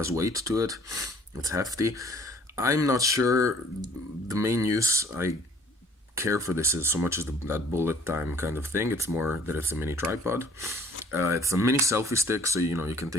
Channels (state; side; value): normal; both; correlation 0.55